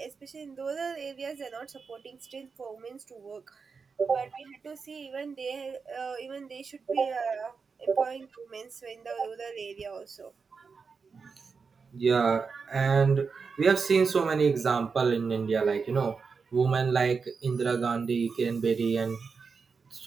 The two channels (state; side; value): quieter; left; 5.2 dB